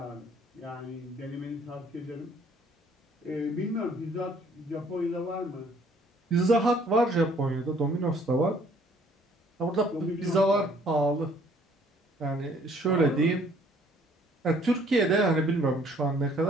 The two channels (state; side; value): normal; both; correlation 0.60